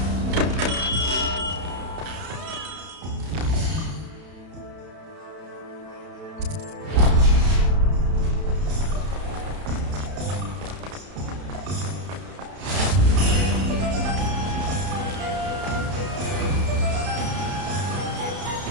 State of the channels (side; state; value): left; late; 31 ms